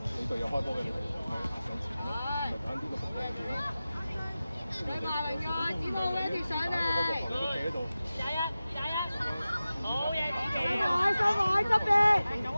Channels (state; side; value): inverted; both; correlation -0.95